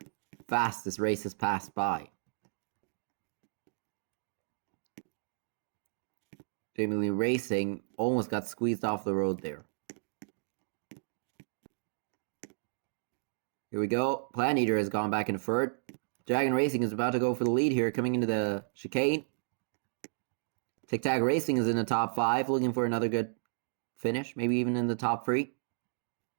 fast this race has passed by. Jamie Lee Racing almost got squeezed off the road there. Here we go. Plan Eater has gone back into third. Dragon Racing is about to go for the lead here, coming into the chicane. Tic Tac Racing is in the top 5, looking for another good finish, maybe even in the top 3.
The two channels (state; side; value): silent; left; digital silence